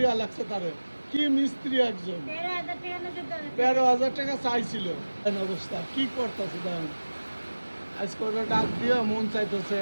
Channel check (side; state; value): both; inverted; correlation -1.00